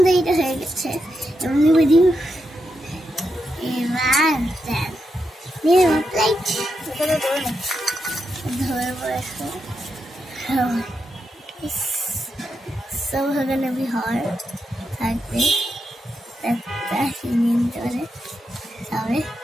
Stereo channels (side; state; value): both; normal; correlation 0.85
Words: এটা হয়ে গেছে। এমনি বুঝি এবার নিয়ে প্লেট ধরে বসে। So we're gonna be hard থাকবে একটা মিনিট ধরে। তবে